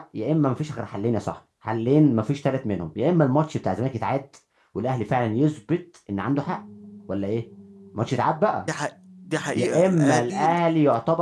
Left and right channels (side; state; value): both; identical; correlation 1.00